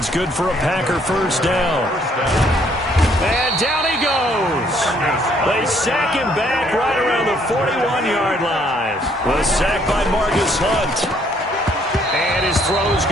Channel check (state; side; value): normal; both; correlation 0.66